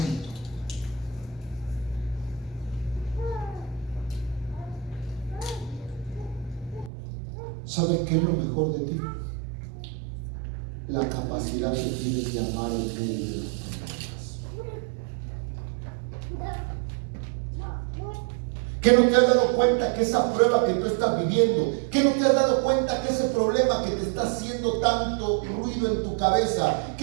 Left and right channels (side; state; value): left; drops out; at 6.9 s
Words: ¿Sabes qué es lo mejor de ti? La capacidad que tienes de amar en medio de los problemas. ¿Qué no te has dado cuenta que esa prueba que tú estás viviendo, que no te has dado cuenta que ese problema que te está haciendo tanto ruido en tu cabeza,